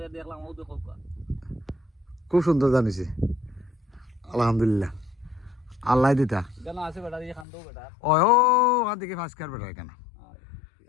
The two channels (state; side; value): drops out; right; at 7.5 s